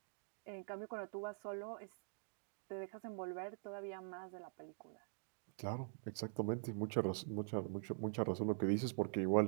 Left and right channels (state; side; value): silent; left; digital silence